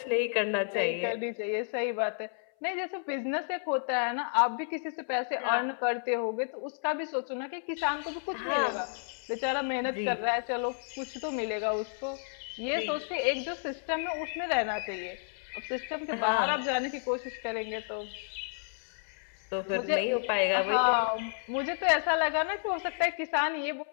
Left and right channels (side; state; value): right; silent; 57 dB below the other